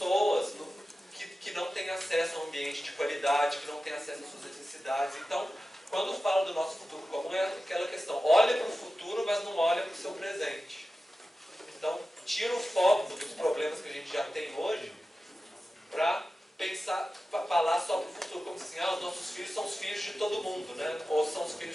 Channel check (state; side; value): normal; both; correlation 0.94